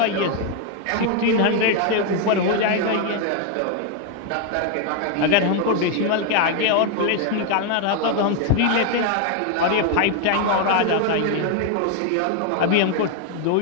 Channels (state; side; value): different; both; correlation 0.01